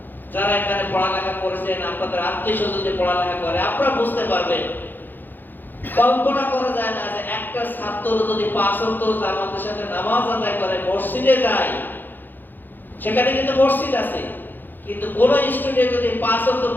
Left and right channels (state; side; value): late; right; 0.090 ms